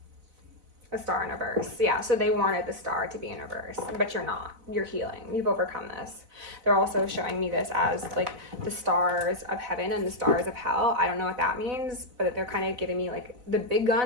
A Star in reverse. Yeah, so they wanted the Star to be in reverse, but you're not. You're healing. You've overcome this. They're also showing me this as like the stars of heaven and the stars of hell. I don't know what that means, but they're kind of giving me like the big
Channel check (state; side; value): late; left; 4.0 ms